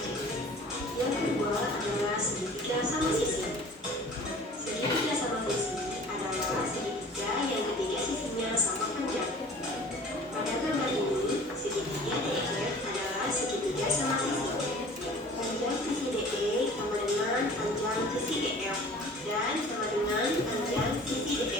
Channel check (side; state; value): both; normal; correlation 0.46